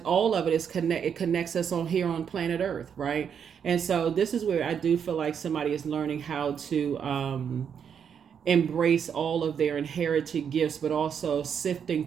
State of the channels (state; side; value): quieter; left; 7.6 dB